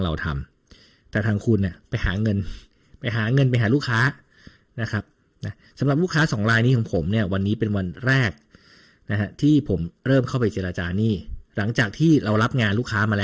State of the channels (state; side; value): identical; both; correlation 1.00